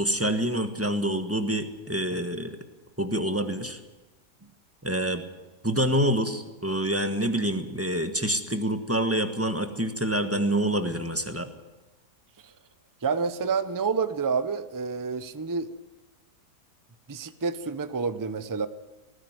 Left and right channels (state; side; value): normal; both; correlation 0.08